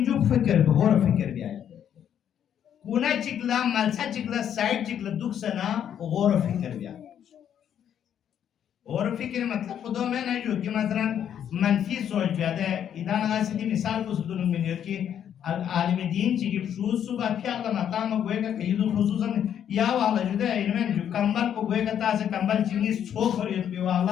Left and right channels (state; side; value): quieter; right; 9.4 dB